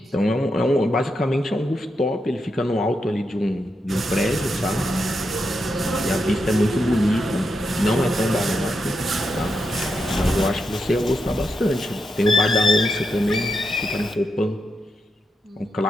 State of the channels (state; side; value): normal; both; correlation 0.85